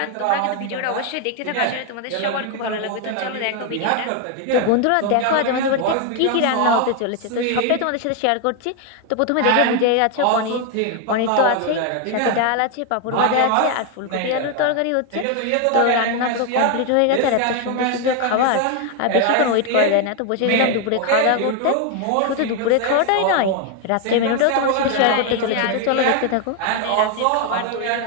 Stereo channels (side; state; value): both; different; correlation 0.01